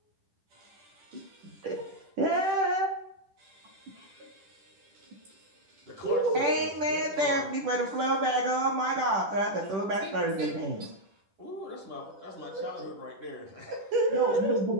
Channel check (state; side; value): late; left; 10 ms